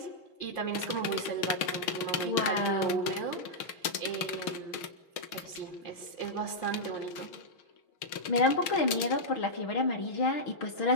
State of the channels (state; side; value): late; right; 6.5 ms